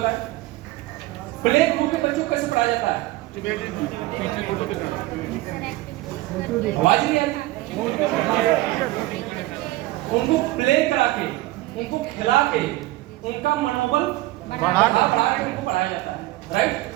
प्ले ग्रुप के बच्चों को कैसे पढ़ाया जाता है? आवाज नहीं आ रही? उनको प्ले करा के, उनको खिला के, उनका मनोबल बढ़ा के उनको पढ़ाया जाता है।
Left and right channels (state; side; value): quieter; left; 18.4 dB